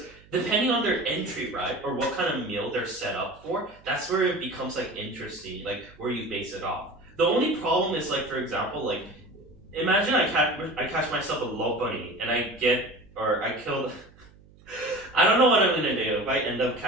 depending on their entry, right, or what kind of meal they're set up for, that's where it becomes like interesting, like where you base it off. The only problem is like, for example, like imagine I catch myself a Lopunny and I kill. I don't know what I'm gonna do. If I end up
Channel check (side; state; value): right; noise; hum, 26 dB below the sound